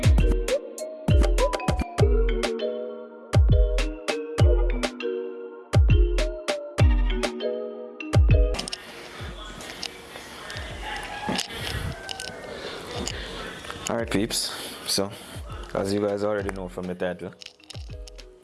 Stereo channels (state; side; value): identical; both; correlation 1.00